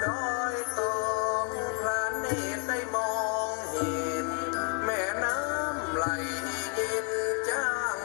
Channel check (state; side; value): quieter; right; 39.6 dB